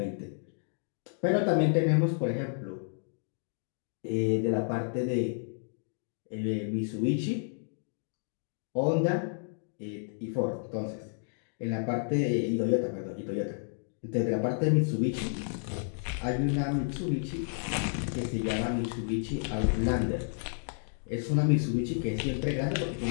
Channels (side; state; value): right; silent; digital silence